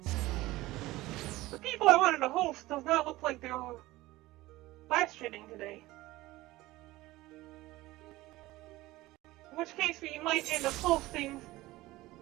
The people I wanted to host does not look like they're live streaming today. In which case we might end up hosting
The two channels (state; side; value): quieter; left; 18.3 dB